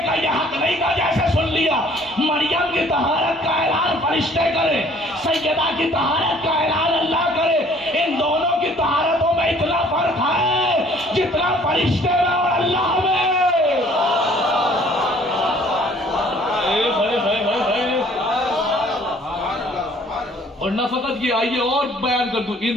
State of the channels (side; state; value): both; normal; correlation 0.56